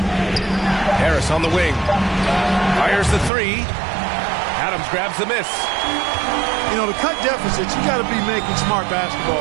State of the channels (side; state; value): left; drops out; at 3.3 s